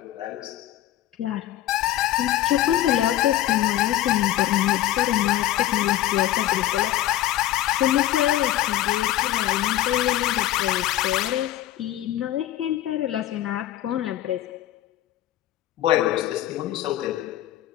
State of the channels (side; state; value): right; quieter; 13.6 dB